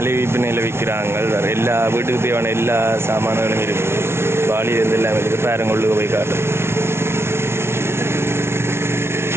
விற்பனையில் விற்கிறாங்க. வேறு எல்லா வீட்டுக்கு தேவையான எல்லா சாமான்களும் இருக்குது. வாளியிலிருந்து எல்லாம் இருக்குது. பேரங்கொள்ளுக்கு போய் காட்டு.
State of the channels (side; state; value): left; late; 0.12 ms